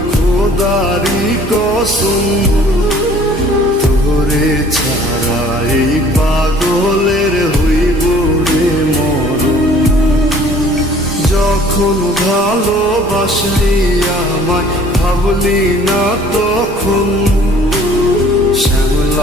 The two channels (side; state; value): both; normal; correlation 0.53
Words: খোদারি কসম, তোরে ছাড়া এই পাগলের হইব রে মরণ। যখন ভালোবাসলি আমায় ভাবলি না তখন,